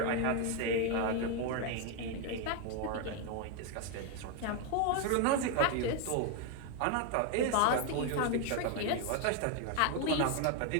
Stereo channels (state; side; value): different; both; correlation 0.01